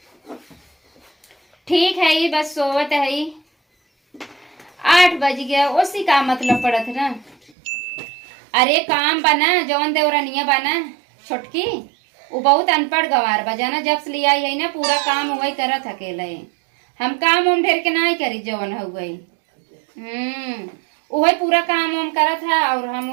ठीक है ही, बस सोवत है ही। 8 बज गया, उसी का मतलब पड़त ना। अरे काम बना जौन देवरनिया बना छोटकी, वो बहुत अनपढ़ गवार बा जाना। जब से लिया है ना पूरा काम वही करत अकेले। हम काम उम ढेर के नहीं करी जौन हो गई। वही पूरा काम उम करत है और हम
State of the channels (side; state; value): left; drops out; at 7.5 s